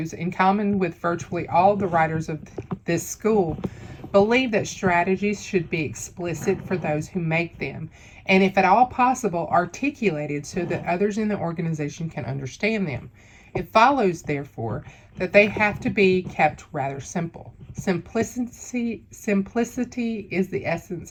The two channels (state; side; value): identical; both; correlation 1.00